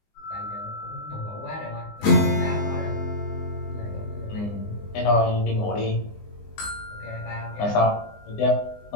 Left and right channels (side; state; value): right; late; 19 ms